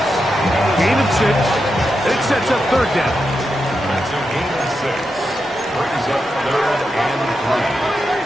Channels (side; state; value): both; normal; correlation 0.87